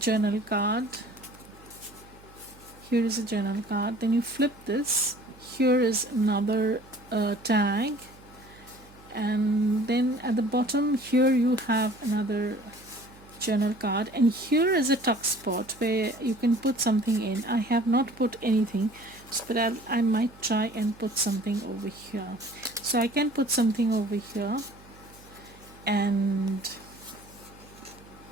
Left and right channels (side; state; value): right; noise; hum, 23 dB below the sound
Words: card. Here is a journal card. Then you flip this. Here is another tag. And then at the bottom here you have another journal card, and here is a tuck spot where you can put something in. I have not put anything, but I might try and put something over here. So I can put something over here, and